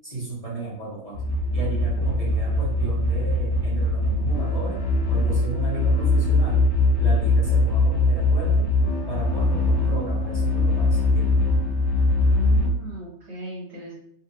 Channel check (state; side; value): late; left; 3.2 ms